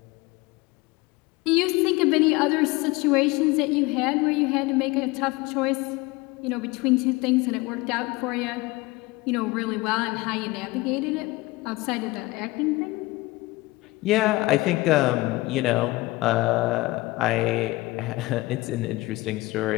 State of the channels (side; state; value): right; quieter; 21.2 dB